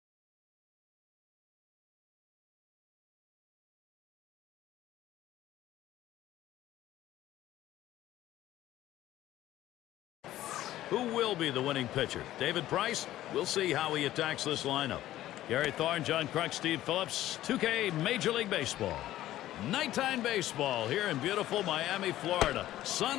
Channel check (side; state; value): right; quieter; 14.1 dB